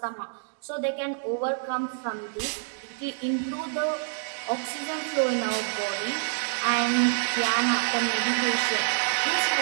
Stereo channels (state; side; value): silent; left; digital silence